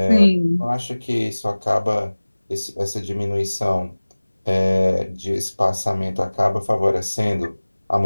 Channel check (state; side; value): inverted; both; correlation -1.00